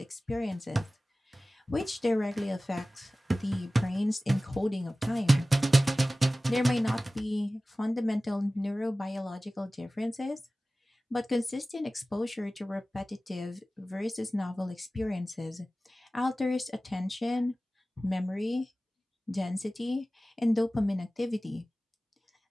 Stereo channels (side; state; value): both; normal; correlation 0.97